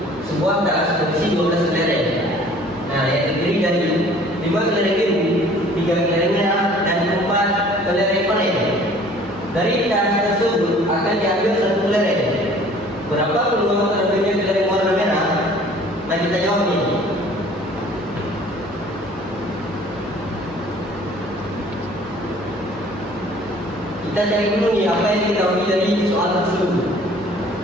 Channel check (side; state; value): both; normal; correlation 0.52